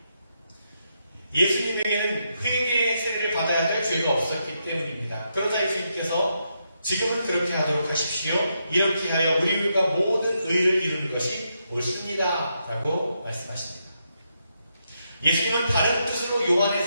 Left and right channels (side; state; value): both; inverted; correlation -0.81